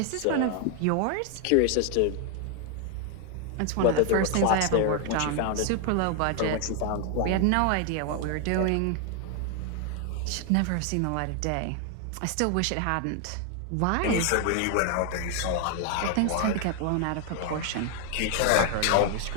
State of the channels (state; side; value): different; both; correlation 0.00